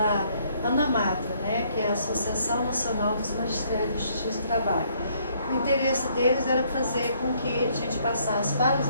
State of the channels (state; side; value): inverted; both; correlation -0.67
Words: ANAMATRA, né, que é a Associação Nacional dos Magistrados de Justiça do Trabalho. O interesse deles era fazer com que a gente passasse para os